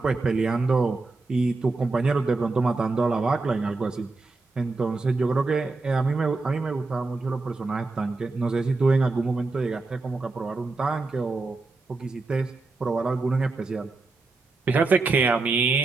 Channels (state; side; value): quieter; left; 3.6 dB